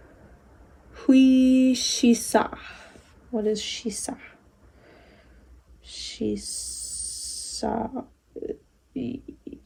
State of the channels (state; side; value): identical; both; correlation 1.00